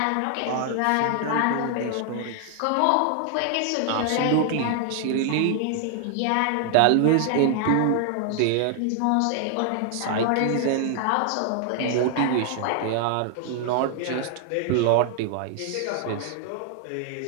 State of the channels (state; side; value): different; both; correlation 0.00